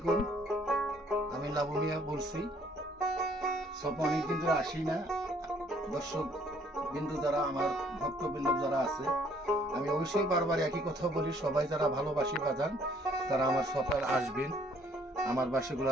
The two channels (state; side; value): normal; both; correlation 0.62